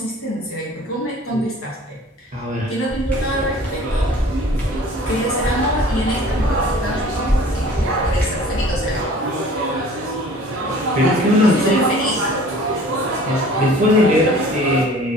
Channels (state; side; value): normal; both; correlation 0.48